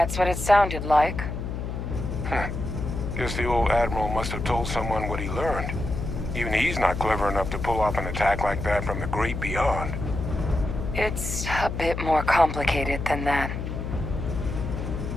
what it sounded like. Guess the old Admiral must have told someone what he learned. Even he's not clever enough to pull off an attack like that from the great beyond. It's a bit more complicated than that.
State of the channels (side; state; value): left; noise; hum, 5 dB below the sound